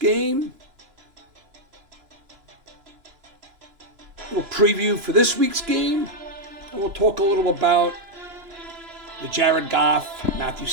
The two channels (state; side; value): late; left; 2.9 ms